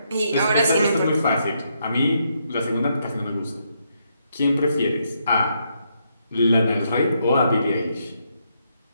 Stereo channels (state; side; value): inverted; both; correlation -0.77